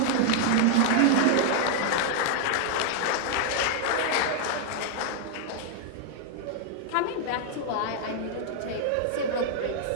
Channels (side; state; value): both; different; correlation 0.00